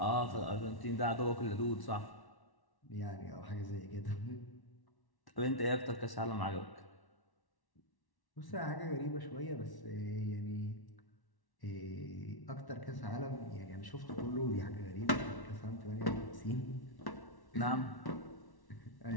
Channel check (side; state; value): right; late; 1.1 ms